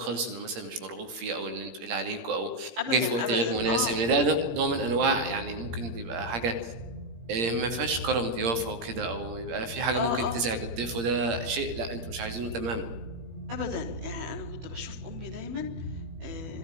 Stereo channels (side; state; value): left; late; 17 ms